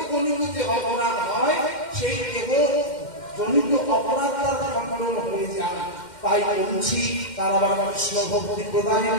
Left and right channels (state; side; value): late; right; 2.1 ms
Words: জনিত যে অপরাধ হয়, সেই দেহ জনিত অপরাধ তার খণ্ডন হয়ে যায়। তাই বলছি তার আবার কৃষ্ণ ভক্তি